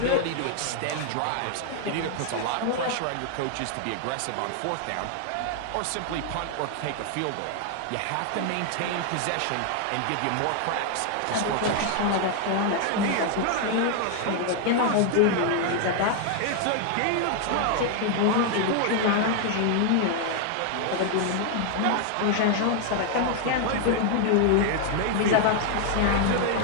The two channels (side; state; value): both; different; correlation 0.00